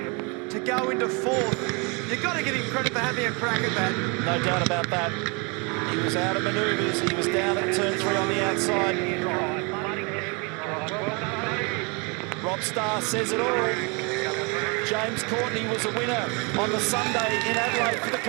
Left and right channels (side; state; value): left; quieter; 31.2 dB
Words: to go into fourth. You've got to give him credit for having a crack at that. No doubt about that. He was out of manoeuvres. He was down at turn 3 on the outside. Rob Starr says it all. James Courtney was a winner on the Sunday in Adelaide for the